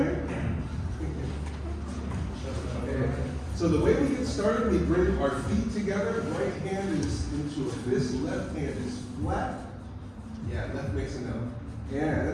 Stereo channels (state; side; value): identical; both; correlation 1.00